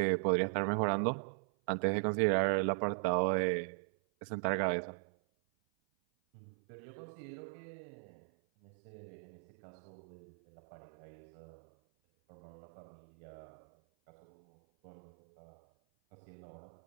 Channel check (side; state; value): left; silent; 52 dB below the other